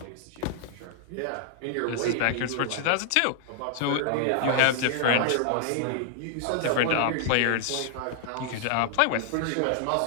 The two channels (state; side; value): different; both; correlation -0.01